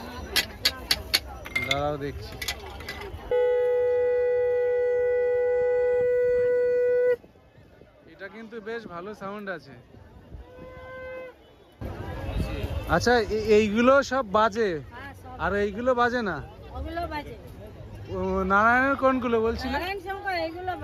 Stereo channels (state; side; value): identical; both; correlation 1.00